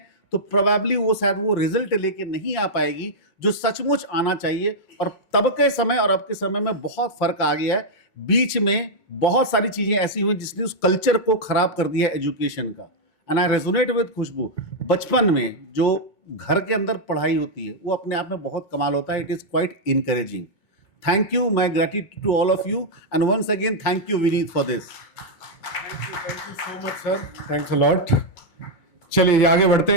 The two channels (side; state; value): right; late; 2.2 ms